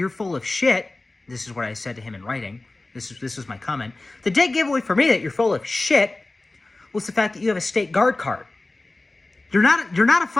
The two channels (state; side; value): quieter; right; 3.0 dB